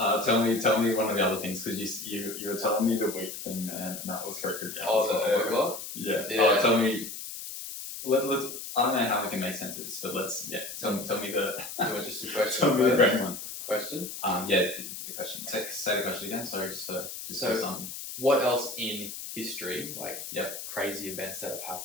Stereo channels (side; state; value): left; noise; hiss, 9 dB below the sound